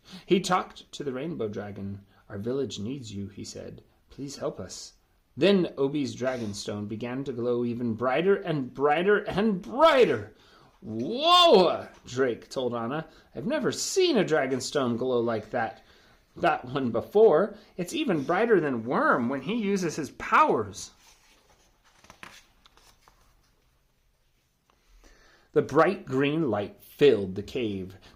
He talked to the rainbow dragon. "Our village needs you," he said. "Please help us." Then Obi's dragonstone began to glow even brighter and brighter and brighter. "Whoa!" Drake told Anna. "I've never seen a dragonstone glow like that one before. It's even brighter than Worm when he uses his powers." The bright green light filled the cave.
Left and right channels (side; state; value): both; identical; correlation 1.00